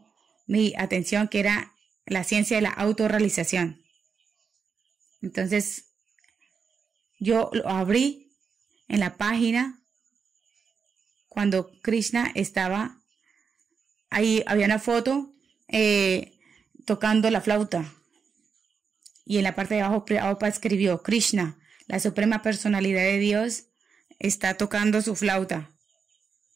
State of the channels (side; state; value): left; quieter; 5.9 dB